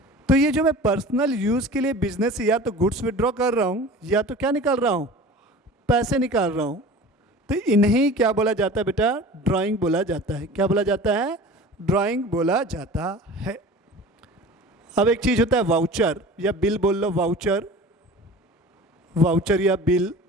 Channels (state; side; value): normal; both; correlation 0.39